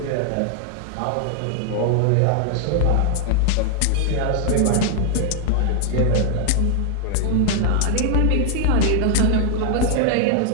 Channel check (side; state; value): both; different; correlation 0.00